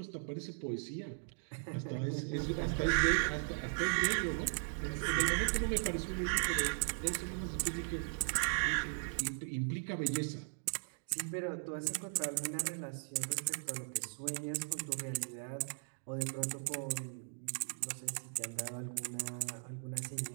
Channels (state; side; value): silent; left; digital silence